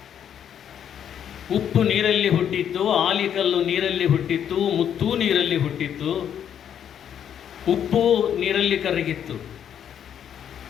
ಉಪ್ಪು ನೀರಲ್ಲಿ ಹುಟ್ಟಿತ್ತು, ಆಲಿಕಲ್ಲು ನೀರಲ್ಲಿ ಹುಟ್ಟಿತ್ತು, ಮುತ್ತೂ ನೀರಲ್ಲಿ ಹುಟ್ಟಿತ್ತು. ಉಪ್ಪು ನೀರಲ್ಲಿ ಕರಗಿತ್ತು,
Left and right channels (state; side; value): quieter; right; 9.1 dB